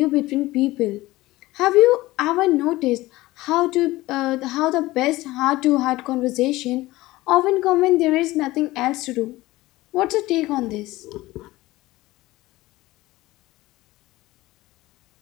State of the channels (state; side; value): quieter; right; 18.5 dB